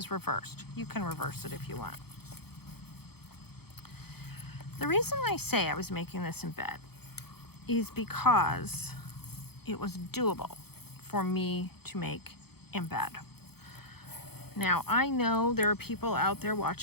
reversed. You can reverse it if you want. The reason I say I was making this in bed is because it was doable for me to make in bed. Now, I know there are people out there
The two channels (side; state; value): right; late; 0.96 ms